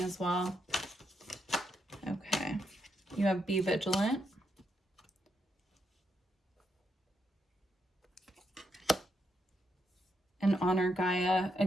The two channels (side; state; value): both; normal; correlation 0.80